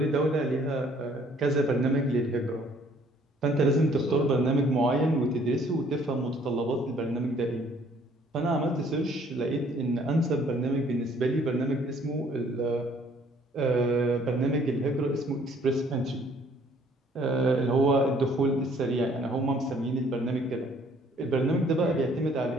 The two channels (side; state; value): both; normal; correlation 0.60